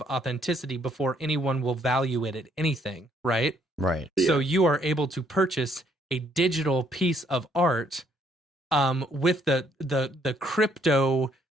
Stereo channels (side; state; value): both; normal; correlation 0.68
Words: authenticity before anyone will value it at anything, right? Right. So you are able to purchase a digital piece of art with the crypto